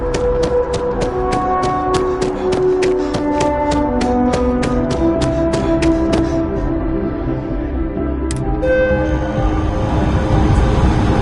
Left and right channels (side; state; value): both; identical; correlation 1.00